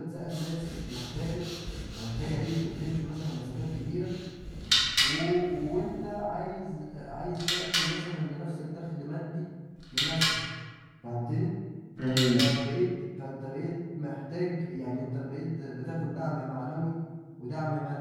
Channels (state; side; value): identical; both; correlation 1.00